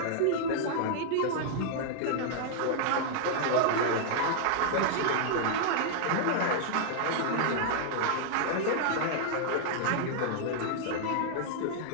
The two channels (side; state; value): both; different; correlation -0.01